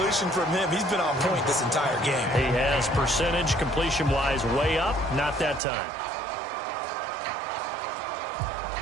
from him. He's been on point this entire game. He has percentage completion-wise way up. Not that time.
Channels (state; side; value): drops out; left; at 5.6 s